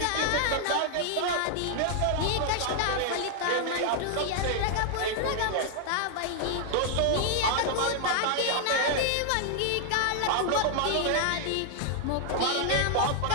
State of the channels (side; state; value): both; different; correlation 0.00